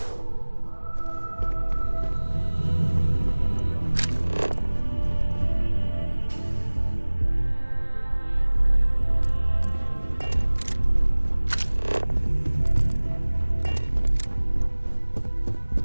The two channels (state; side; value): inverted; both; correlation -1.00